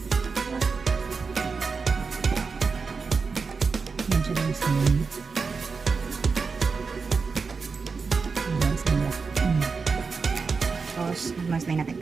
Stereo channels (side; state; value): left; quieter; 4.9 dB